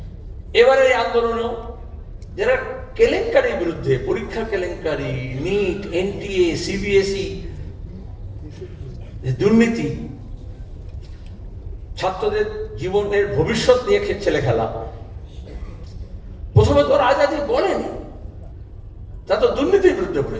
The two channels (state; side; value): identical; both; correlation 1.00